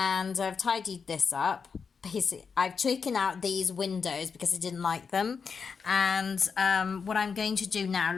I've tidied this up. Basically, I've taken out these windows because I didn't like them. And what I'm going to do now,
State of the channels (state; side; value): quieter; right; 5.7 dB